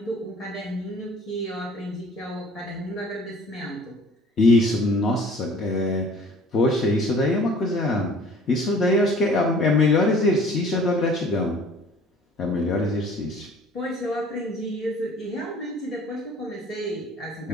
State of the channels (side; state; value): both; normal; correlation 0.51